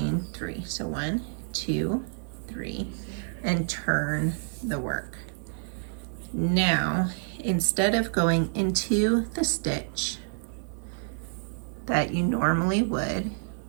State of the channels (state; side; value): silent; left; 59 dB below the other